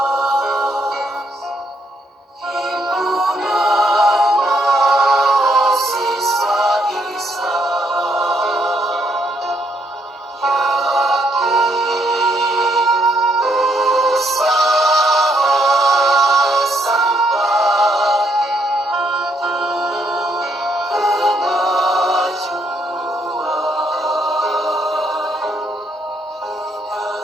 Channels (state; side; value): normal; both; correlation 0.72